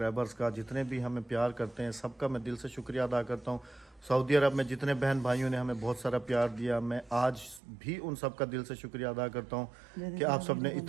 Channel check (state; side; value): drops out; left; at 7.6 s